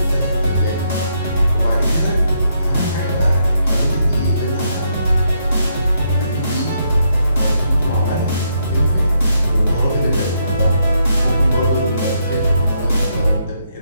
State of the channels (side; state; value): both; inverted; correlation -0.76